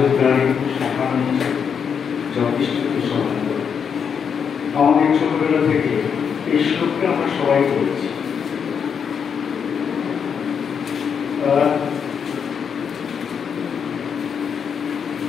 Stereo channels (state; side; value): quieter; right; 7.0 dB